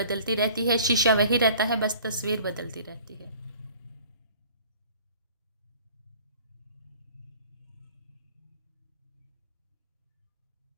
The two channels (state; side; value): inverted; both; correlation -0.49